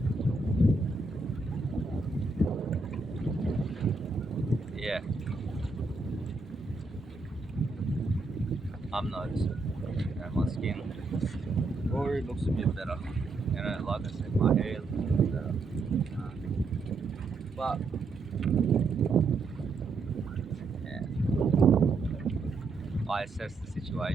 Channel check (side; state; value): left; quieter; 3.8 dB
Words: Yeah, I'm noticing. You know, my skin already looks a bit better. You know, like I said, my hair looks a bit better. But yeah, I assess the